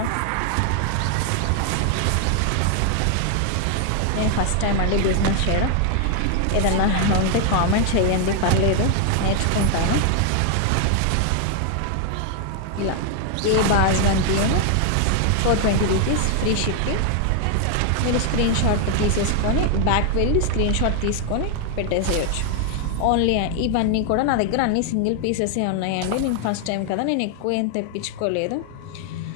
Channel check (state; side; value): different; both; correlation 0.00